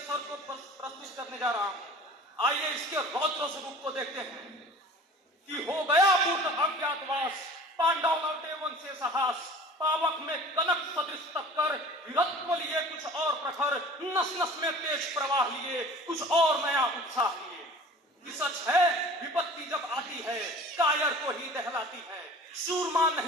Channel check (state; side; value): normal; both; correlation 0.43